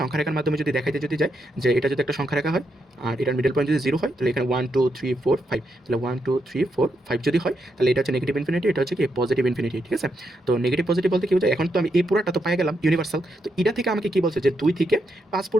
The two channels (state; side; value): normal; both; correlation 0.81